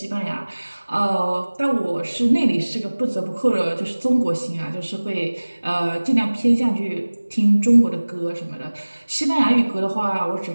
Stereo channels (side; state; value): both; inverted; correlation -1.00